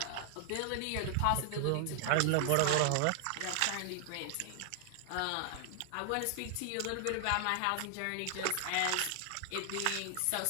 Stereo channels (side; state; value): both; different; correlation 0.00